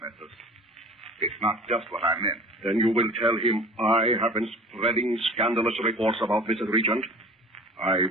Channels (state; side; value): normal; both; correlation 0.42